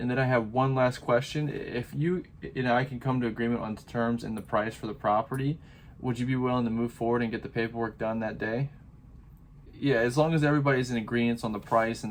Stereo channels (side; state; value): both; identical; correlation 1.00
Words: then I have one last question. If you and I can come to agreement on the terms and the price for the property, would you be willing to move forward and get the paperwork done that day? Yeah, as long as everybody's in agreement on the price